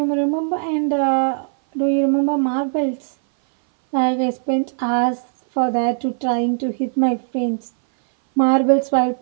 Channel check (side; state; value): left; silent; 60 dB below the other